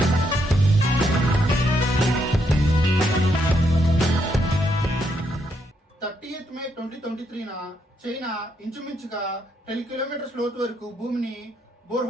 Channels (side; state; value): both; normal; correlation 0.76